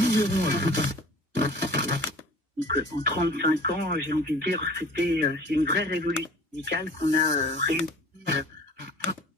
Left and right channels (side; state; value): both; normal; correlation 0.45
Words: verrons à plus tard. Donc, en 35 ans, j'ai envie de dire, c'est une vraie révolution médicale qu'on a réussi